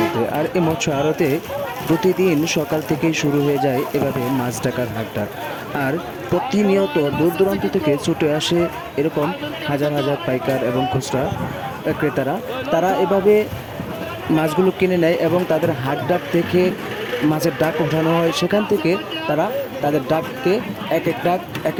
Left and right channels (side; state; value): both; identical; correlation 1.00